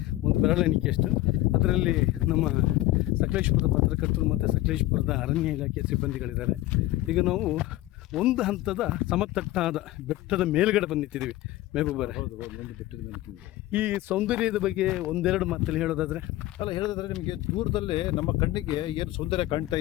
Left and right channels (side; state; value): right; quieter; 16.3 dB